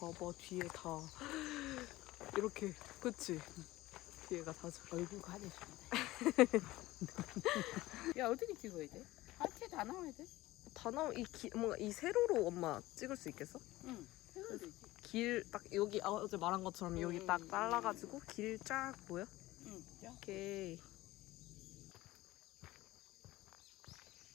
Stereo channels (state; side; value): quieter; right; 17.9 dB